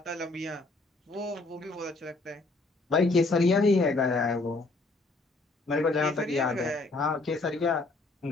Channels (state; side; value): quieter; right; 3.3 dB